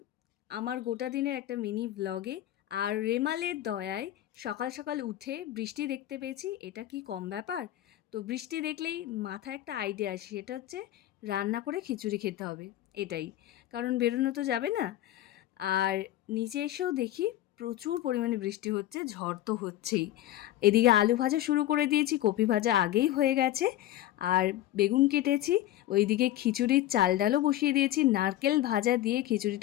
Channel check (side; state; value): right; quieter; 13.8 dB